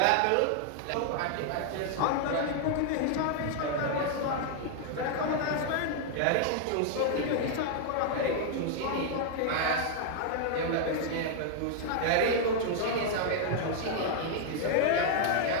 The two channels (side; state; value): both; different; correlation 0.00